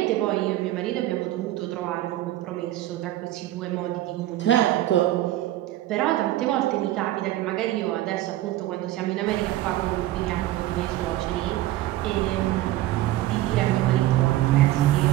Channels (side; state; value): left; quieter; 15.0 dB